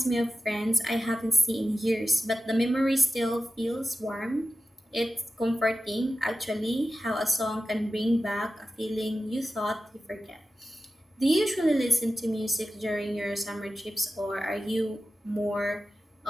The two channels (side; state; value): both; normal; correlation 0.93